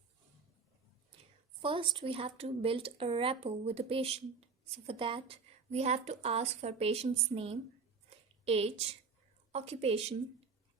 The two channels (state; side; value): quieter; left; 5.1 dB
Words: First we have to build a rapport with the patient. So for that we have to ask for patient's name, age, occupation,